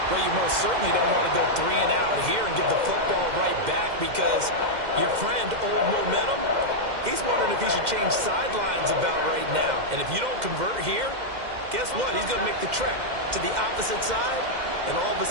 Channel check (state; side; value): late; left; 2.1 ms